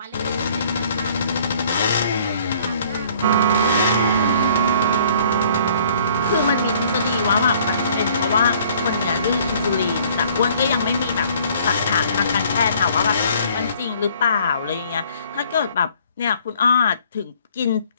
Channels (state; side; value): inverted; both; correlation -0.58